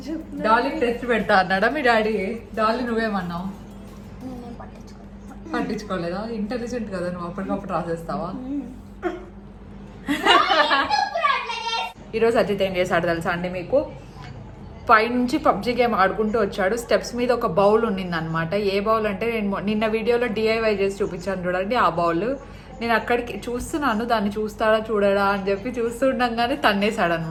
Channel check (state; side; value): identical; both; correlation 1.00